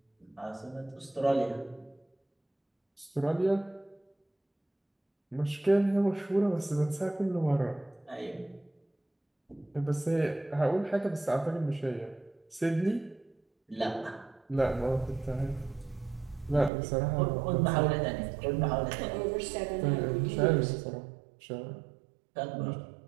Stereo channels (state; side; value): drops out; left; at 16.7 s